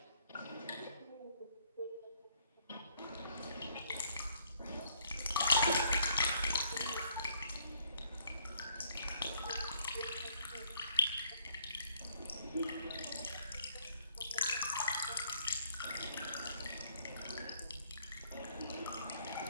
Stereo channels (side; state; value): both; inverted; correlation -0.66